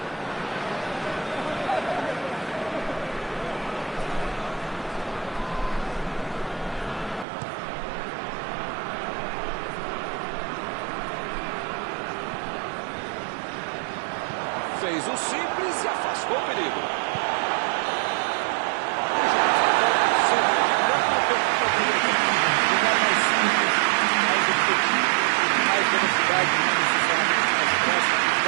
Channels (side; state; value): left; drops out; at 7.2 s